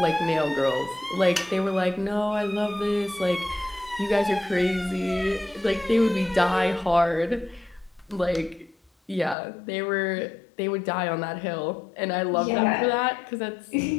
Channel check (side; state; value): right; drops out; at 9.3 s